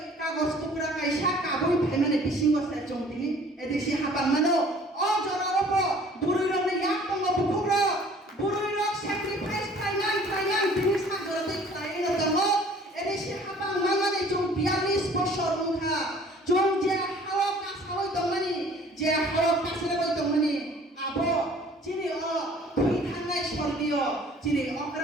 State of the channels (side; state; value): both; normal; correlation 0.52